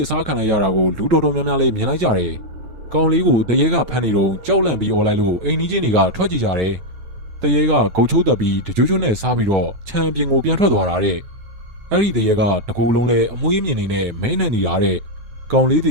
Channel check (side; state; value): left; late; 9.2 ms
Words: စားခံလိုက်ရတာကိုလူတော်တော်များများလေးမြင်လိုက်ကြတယ်ကောင်လေးကိုတရေကဖမ်းနေတော့ကြောက်လန့်ပြီးអော်လိုက်လို့အိမ်ကြီးချင်းတွေကထွက်ကြည့်ကြတယ်တရေကဂုတ်ချိုးတက်ပြီးတကြွကြွနဲ့စားပြီးတော့ခြံပြင်ကိုပြန်ထွက်သွားတာတဲ့အဲ့ဒီတရေကတကူလုံးလဲအမွှေးမြင်နေနဲ့မဲနေနေတာတဲ့ကောင်လေးတည